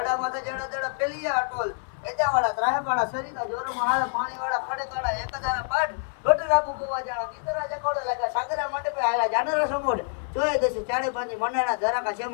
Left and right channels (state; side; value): silent; right; 60 dB below the other